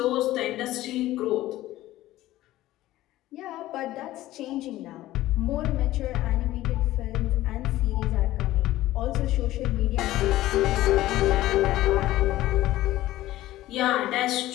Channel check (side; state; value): right; quieter; 15.6 dB